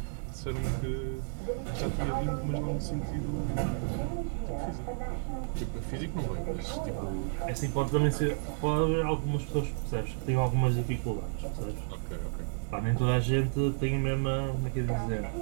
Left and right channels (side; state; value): left; silent; digital silence